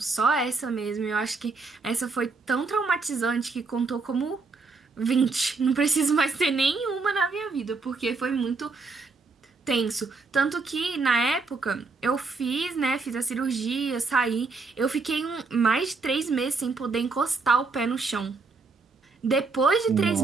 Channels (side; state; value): left; quieter; 4.1 dB